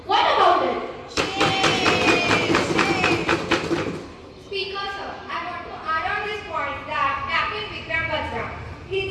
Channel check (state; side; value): identical; both; correlation 1.00